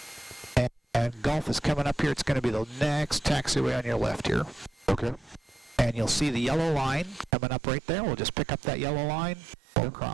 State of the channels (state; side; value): drops out; left; at 7.3 s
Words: And Golf is coming up here. It's going to be the next taxiway on your left here. Okay. And you'll see the yellow line coming up right there. We'll just pick up that yellow line, go